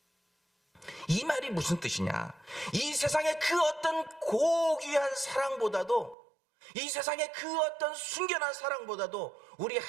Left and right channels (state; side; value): drops out; left; at 6.2 s